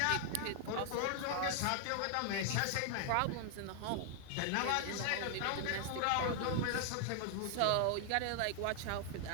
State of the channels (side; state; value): both; different; correlation 0.00